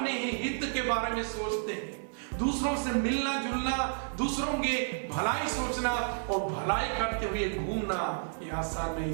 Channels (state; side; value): silent; left; digital silence